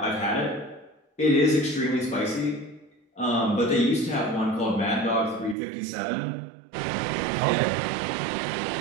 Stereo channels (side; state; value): left; drops out; at 5.6 s